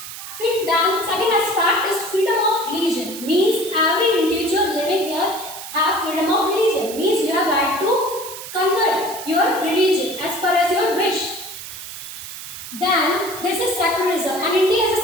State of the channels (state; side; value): noise; right; hiss, 11 dB below the sound